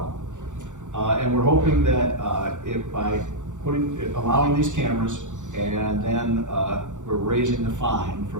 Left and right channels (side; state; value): left; late; 0.85 ms